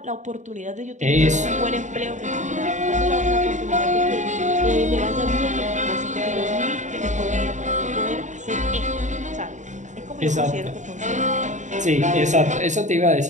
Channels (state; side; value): late; left; 0.35 ms